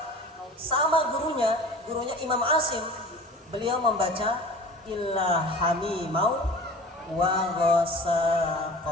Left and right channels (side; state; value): both; normal; correlation 0.40